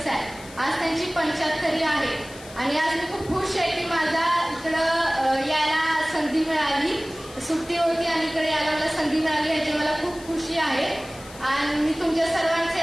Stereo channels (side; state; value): left; noise; hiss, 19 dB below the sound